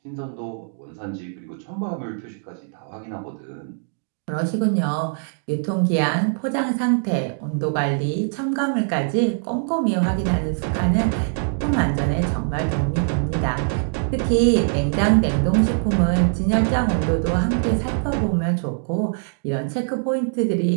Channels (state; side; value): silent; left; 64 dB below the other